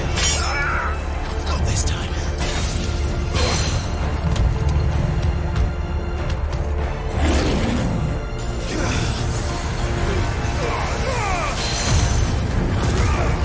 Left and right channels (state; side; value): identical; both; correlation 1.00